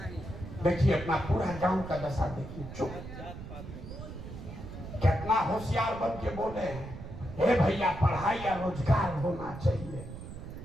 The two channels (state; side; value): noise; right; rumble, 11 dB below the sound